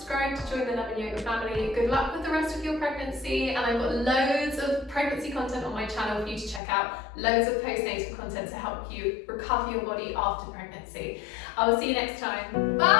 to join the Love and Yoga family. Good luck with the rest of your pregnancy, and I've got loads of pregnancy content on my channel for you to check out. Loads of postnatal content to help you recover your body after pregnancy. I will see you next time.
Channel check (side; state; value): right; drops out; at 6.6 s